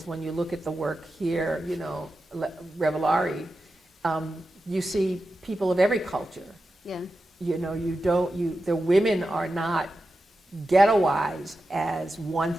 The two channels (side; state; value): both; normal; correlation 0.91